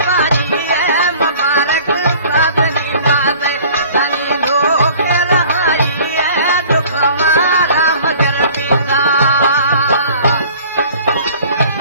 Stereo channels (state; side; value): inverted; both; correlation -0.49